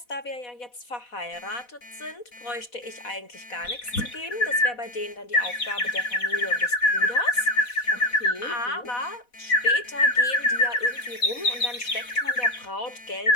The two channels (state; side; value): late; right; 4.1 ms